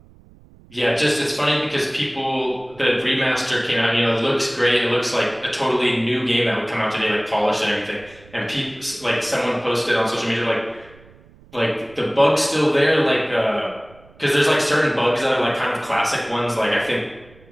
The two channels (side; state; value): right; noise; rumble, 26 dB below the sound